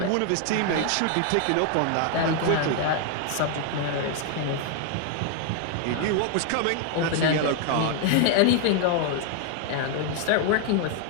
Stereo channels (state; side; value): different; both; correlation 0.00